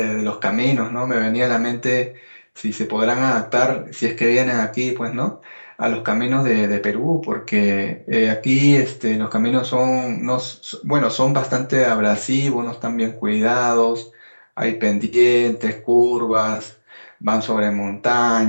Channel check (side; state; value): both; inverted; correlation -1.00